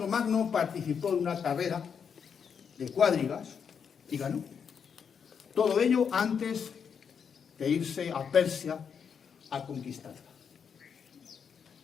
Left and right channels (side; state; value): right; quieter; 6.9 dB